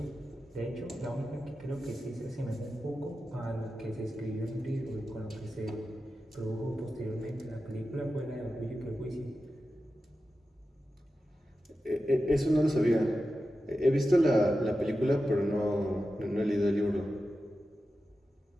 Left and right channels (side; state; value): both; normal; correlation 0.92